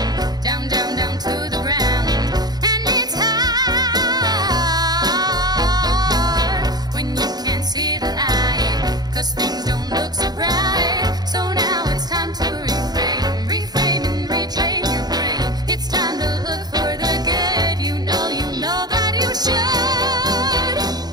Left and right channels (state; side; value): late; left; 0.19 ms